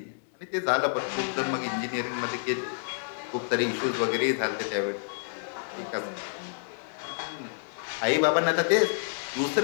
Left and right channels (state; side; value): silent; right; 59 dB below the other